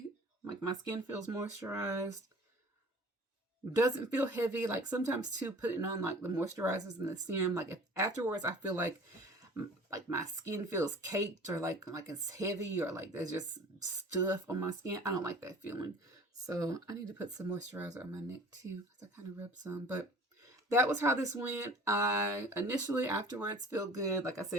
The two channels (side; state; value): both; normal; correlation 0.45